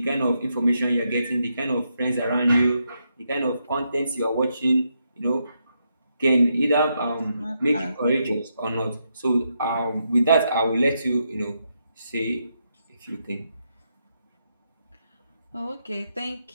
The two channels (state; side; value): inverted; both; correlation -0.81